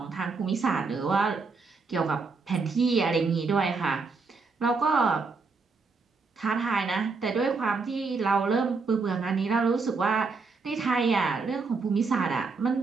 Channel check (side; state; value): left; quieter; 4.4 dB